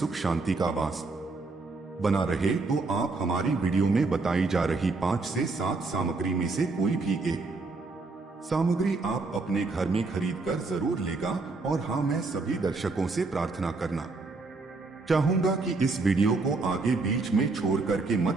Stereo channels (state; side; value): quieter; left; 3.7 dB